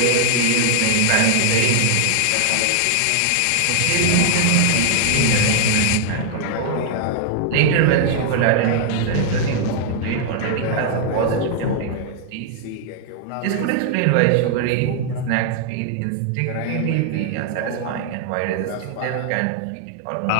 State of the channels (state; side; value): different; both; correlation 0.00